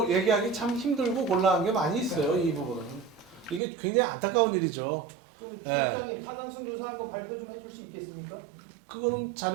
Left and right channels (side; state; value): left; drops out; at 3.6 s